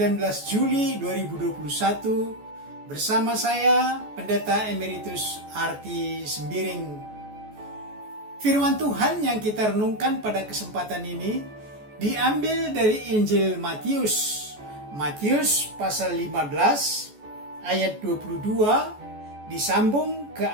Juli 2021 bersama saya Pendeta Emeritus Arti Sembiring. Firman Tuhan yang kita renungkan pada kesempatan ini diambil dari Injil Matius pasal 15 ayat 22 disambung ke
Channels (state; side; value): late; left; 14 ms